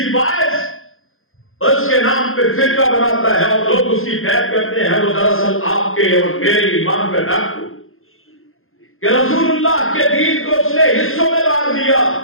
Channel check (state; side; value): late; right; 0.60 ms